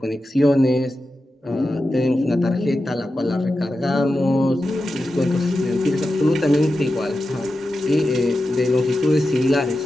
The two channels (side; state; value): both; normal; correlation 0.91